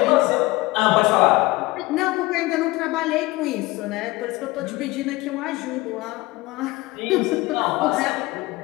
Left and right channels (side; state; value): right; quieter; 20.8 dB